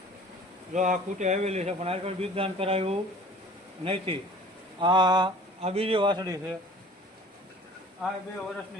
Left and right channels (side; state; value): both; normal; correlation 0.47